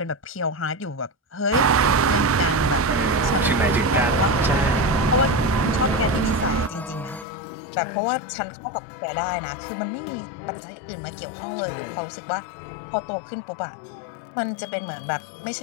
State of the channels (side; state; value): right; drops out; at 7.2 s